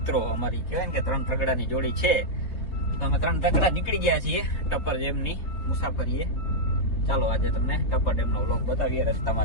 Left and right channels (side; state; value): right; late; 3.9 ms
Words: અમારી કહેવાય ને કે 3 તગડાની જોડી છે. તો અમે 3 તગડા નીકળી ગયા છીએ ટપ્પર ડેમની મુસાફરીએ. ચાલો આજે તમને ટપ્પર ડેમનો વ્લોગ બતાવીએ.